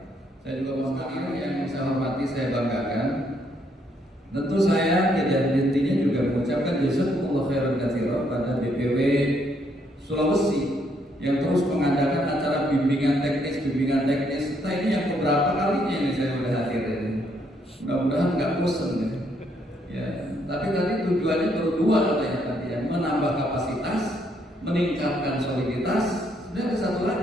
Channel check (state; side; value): normal; both; correlation 0.72